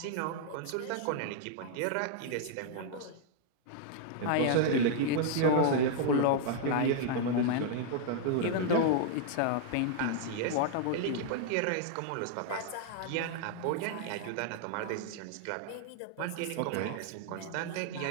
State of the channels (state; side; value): different; both; correlation -0.01